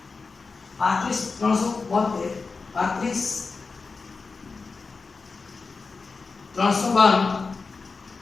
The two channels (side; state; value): right; quieter; 4.4 dB